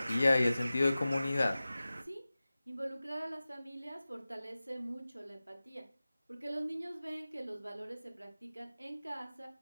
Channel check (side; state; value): both; inverted; correlation -0.97